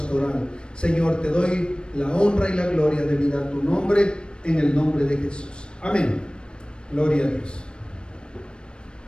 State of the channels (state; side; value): late; right; 0.054 ms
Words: Señor, te doy la honra y la gloria debida a tu nombre, en el nombre de Jesús. Amén. Gloria a Dios.